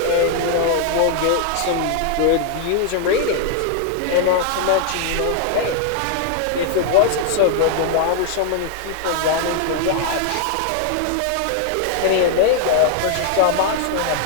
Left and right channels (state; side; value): different; both; correlation 0.00